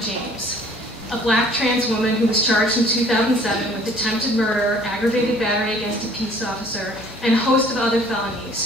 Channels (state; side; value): normal; both; correlation 0.54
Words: James, a black trans woman who was charged in 2007 with attempted murder, aggravated battery against a peace officer, and a host of other